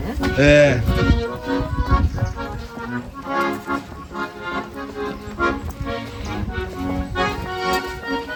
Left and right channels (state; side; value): identical; both; correlation 1.00